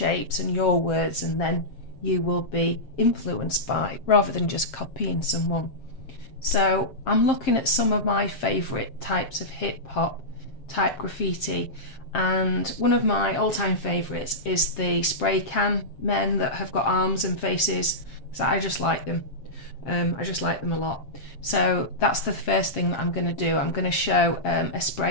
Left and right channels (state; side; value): late; right; 7.5 ms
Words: and your words, and then you will be influenced by, rather than just copying someone. So I'm looking at some of my favourite types of hip hop type graffiti, and one of my all-time favourites is the spray can men that have got arms and faces. So I just like them. I just like them a lot. So that's the first thing that I'm going to do. I'm going to show a